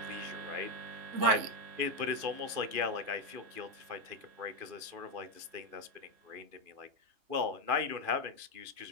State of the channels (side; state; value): left; late; 2.5 ms